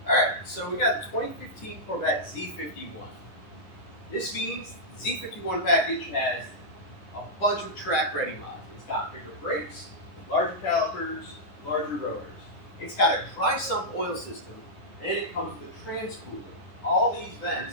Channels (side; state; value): right; late; 10 ms